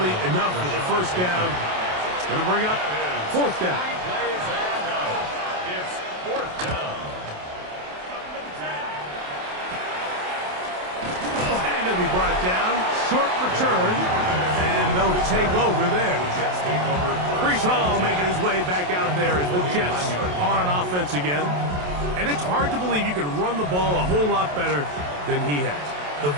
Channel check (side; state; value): left; late; 28 ms